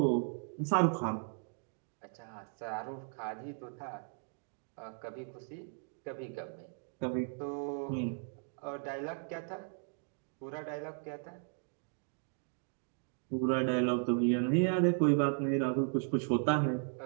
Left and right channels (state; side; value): silent; left; 54 dB below the other